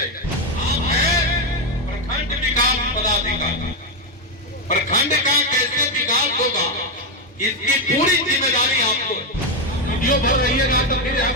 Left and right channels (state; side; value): normal; both; correlation 0.06